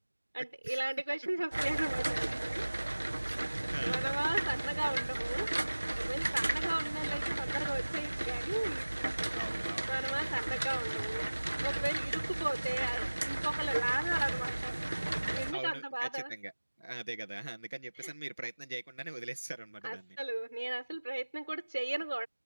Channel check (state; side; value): inverted; both; correlation -1.00